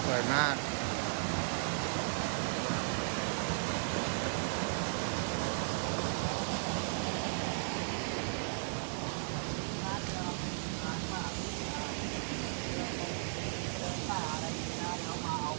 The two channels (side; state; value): left; silent; digital silence